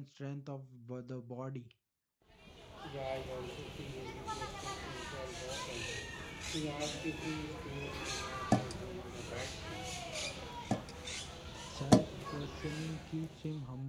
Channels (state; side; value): identical; both; correlation 1.00